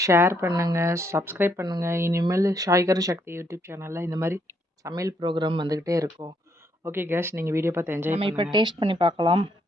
ஷேர் பண்ணுங்கள், சப்ஸ்கிரைப் பண்ணுங்கள். இனிமேல் ஷாய்கர் சக்தி யூடியூப் சேனலில் இந்த மாதிரி சமையல் ப்ரோக்ராம் வந்துக்கிட்டே இருக்கும். ஓகே கேஸ், நீங்கள் வீடியோ பார்த்து என்ஜாய் பண்ணுங்கள். நம்ம இப்போ டேஸ்ட் பண்ணி பார்க்கலாம்.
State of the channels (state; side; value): normal; both; correlation 0.73